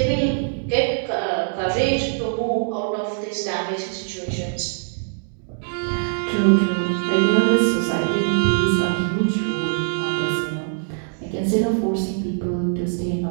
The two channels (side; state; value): left; silent; digital silence